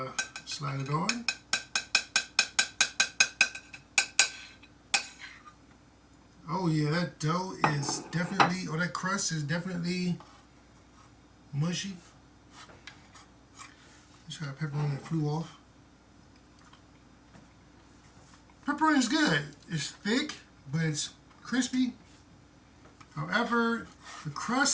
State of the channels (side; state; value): both; identical; correlation 1.00